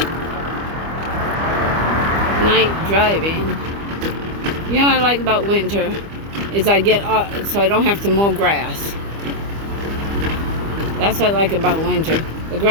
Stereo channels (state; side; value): late; left; 25 ms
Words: Night driving. You know what I like about winter is I get off, so I don't have to mow grass. That's what I like about winter. The